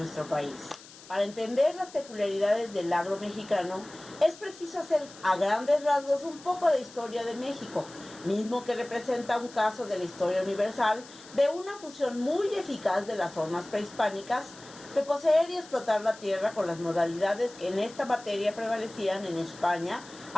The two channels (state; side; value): noise; left; hiss, 19 dB below the sound